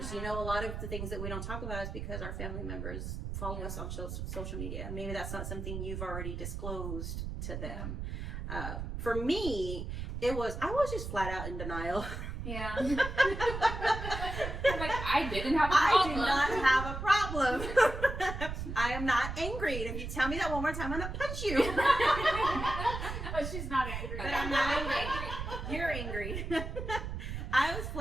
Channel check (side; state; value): right; noise; rumble, 5 dB below the sound